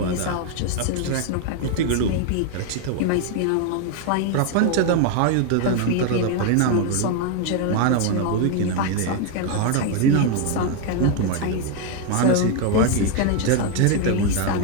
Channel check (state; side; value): different; both; correlation 0.01